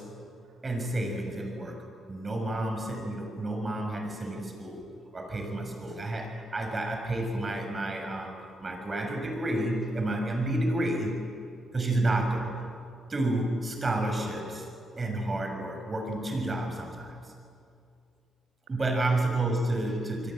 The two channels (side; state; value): both; normal; correlation 0.82